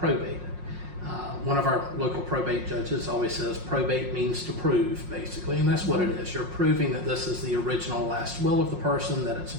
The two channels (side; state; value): left; late; 5.6 ms